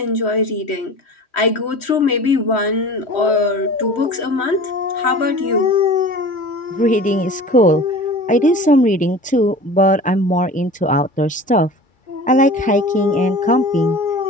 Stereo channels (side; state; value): both; normal; correlation 0.39